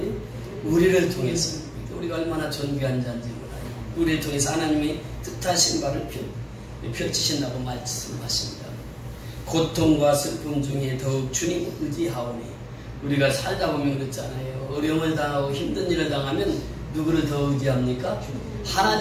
우리를 통해서. 우리가 얼마나 존귀한 자인지 몰라요. 우리를 통해서 하나님이 뜻하신 바를 펼치신다고 말씀하십니다. 고통과 슬픔 중에 더욱 주님을 의지하오니. 우리가 살다 보면 그렇잖아요. 어려움을 당하고 힘든 일을 당하면 누구를 더 의지합니까?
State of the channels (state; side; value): identical; both; correlation 1.00